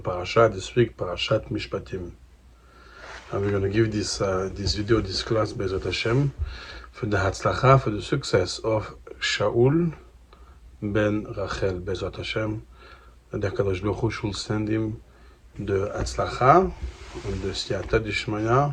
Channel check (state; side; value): identical; both; correlation 1.00